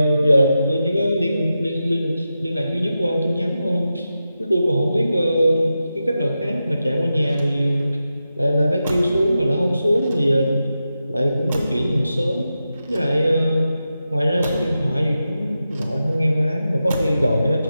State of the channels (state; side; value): inverted; both; correlation -0.90